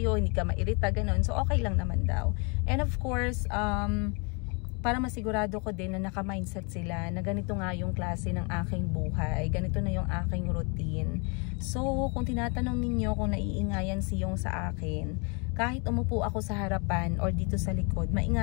hindi ka mairita, ganun. So, okay lang naman daw. And of course, para masigurado ko din na naka-mindset sila na ganito nga yung klase ng aking buhay, ganito na yung aking routine. So, kung tinatanong ninyo kung naiingayan si Yong sa akin, kahit umupo ako sa harapan or dito sa likod,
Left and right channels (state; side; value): quieter; right; 33.7 dB